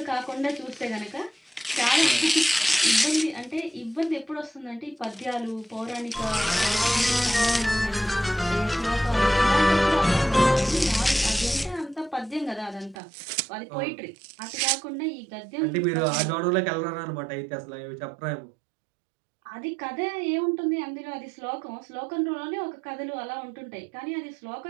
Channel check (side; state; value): left; drops out; at 13.0 s